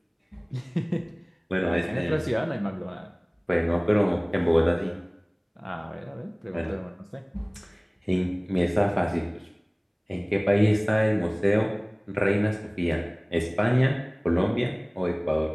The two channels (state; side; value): identical; both; correlation 1.00